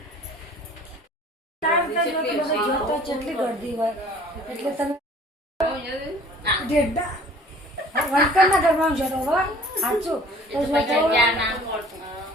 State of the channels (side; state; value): both; normal; correlation 0.51